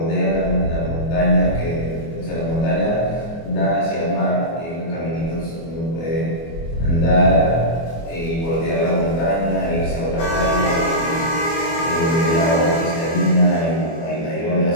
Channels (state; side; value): late; right; 24 ms